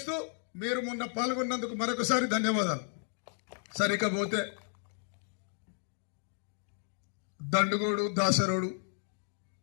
మీరు మొన్న పాల్గొన్నందుకు మరొకసారి ధన్యవాదాలు. సరికపోతే దండుగోడు దాసరోడు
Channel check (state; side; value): silent; right; 56 dB below the other